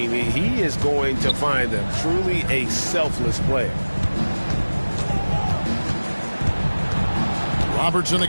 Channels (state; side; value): inverted; both; correlation -1.00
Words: he is going to find them. Truly a selfless player. Robertson